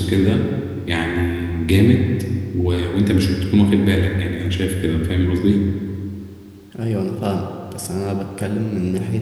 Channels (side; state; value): both; identical; correlation 1.00